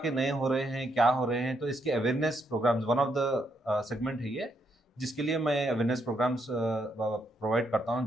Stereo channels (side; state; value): both; normal; correlation 0.76